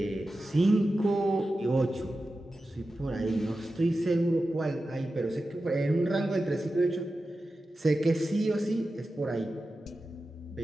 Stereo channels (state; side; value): normal; both; correlation 0.93